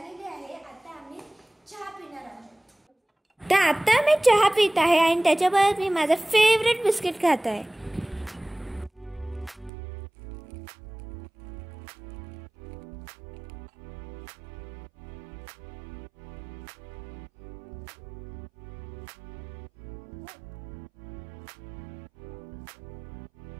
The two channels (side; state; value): left; drops out; at 9.7 s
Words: आहे। आता आम्ही चहा पिणार आहोत। तर आता मी चहा पित आहे आणि त्याच्याबरोबर मी माझं फेवरेट बिस्किट खात आहे।